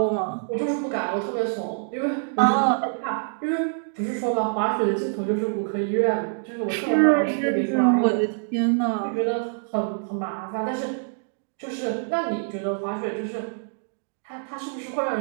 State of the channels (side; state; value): left; silent; digital silence